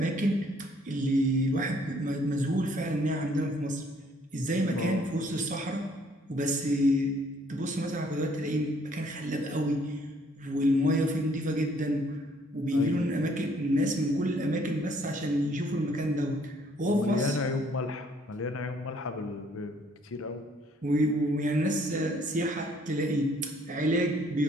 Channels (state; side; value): normal; both; correlation 0.63